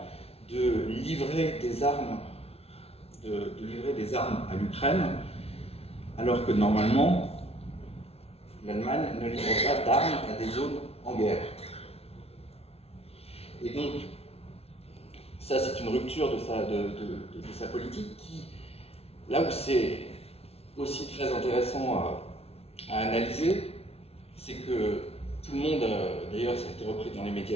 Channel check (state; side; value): late; right; 0.30 ms